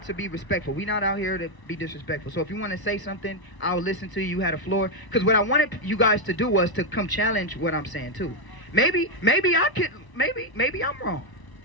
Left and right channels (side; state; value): right; late; 1.0 ms